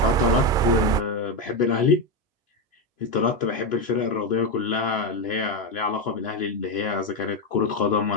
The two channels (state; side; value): normal; both; correlation 0.09